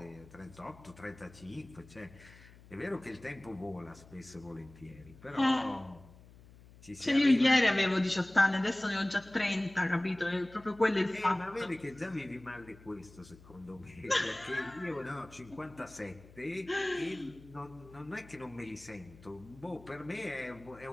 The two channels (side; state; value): left; noise; hum, 22 dB below the sound